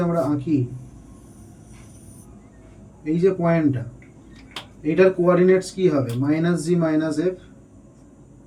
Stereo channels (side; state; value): both; identical; correlation 1.00